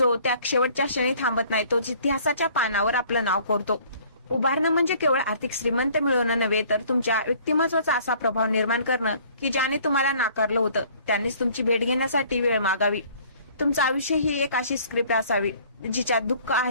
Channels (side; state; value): both; inverted; correlation -0.55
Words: त्या शेवटच्या क्षणी थांबत नाही तोच इतिहासाच्या पानावर आपलं नाव कोरतो. उभारणं म्हणजे केवळ आर्थिक श्रीमंत मिळवणं नव्हे, तर तुमच्या व्यक्तिमत्वाचा असा प्रभाव निर्माण करणं की ज्याने तुम्हाला नाकारलं होतं त्यांनीच तुमची भेट घेण्यासाठी वेळ मागावी. तुमचं आयुष्य ही एक अशी स्क्रिप्ट असावी जिच्यात दुःख